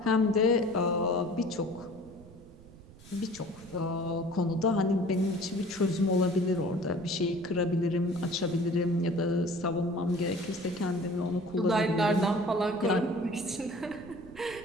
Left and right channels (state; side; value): noise; right; rumble, 20 dB below the sound